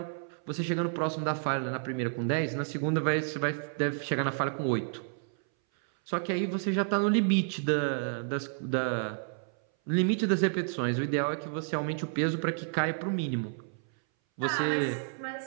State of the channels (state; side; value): silent; left; 57 dB below the other